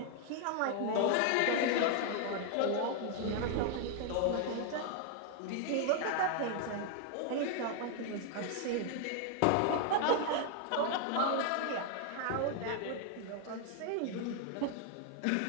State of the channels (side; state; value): both; different; correlation 0.00